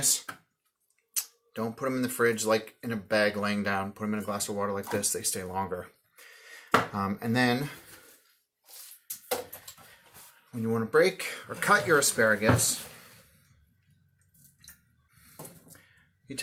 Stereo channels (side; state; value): both; identical; correlation 1.00